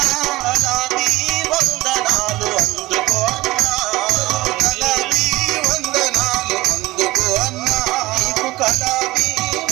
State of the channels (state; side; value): quieter; left; 19.2 dB